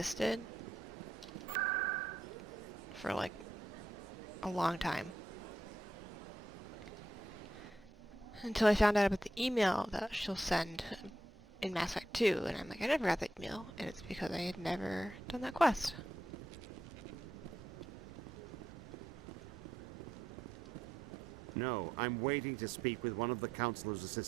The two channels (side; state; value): both; normal; correlation 0.82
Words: for like a long time. Until I found out about the email that she'll send in Mass Effect 2, and I'm like, I never got that email, and it's because I had never done that quest. No, I'm waiting to speak with one of the Councilor's